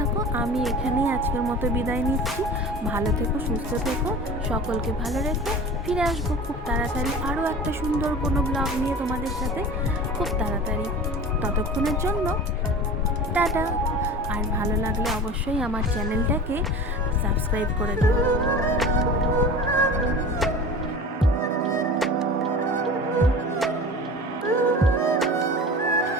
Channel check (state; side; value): normal; both; correlation 0.37